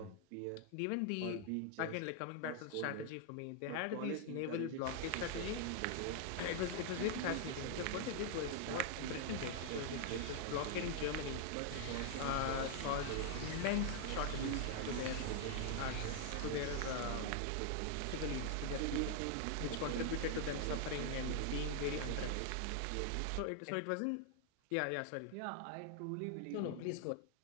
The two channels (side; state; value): both; different; correlation 0.00